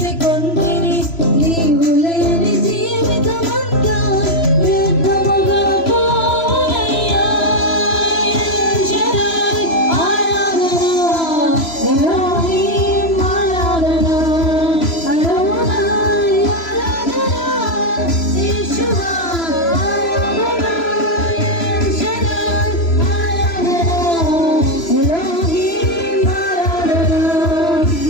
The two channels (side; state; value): right; late; 3.0 ms